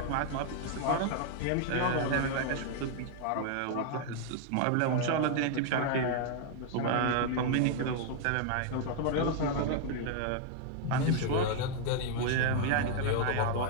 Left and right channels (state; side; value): different; both; correlation 0.00